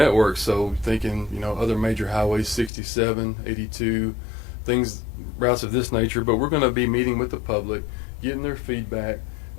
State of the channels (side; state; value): right; drops out; at 2.7 s